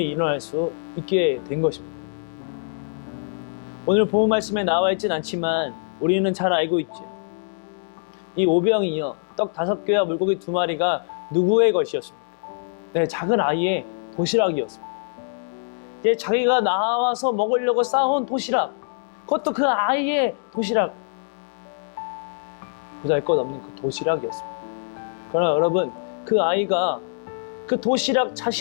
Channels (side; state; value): right; silent; digital silence